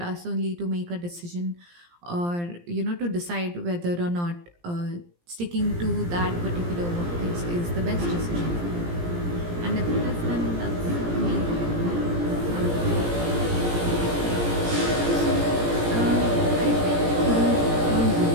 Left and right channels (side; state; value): left; late; 17 ms